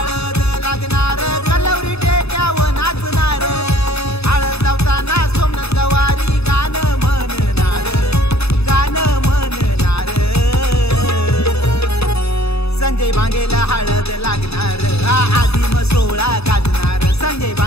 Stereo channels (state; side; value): late; right; 0.79 ms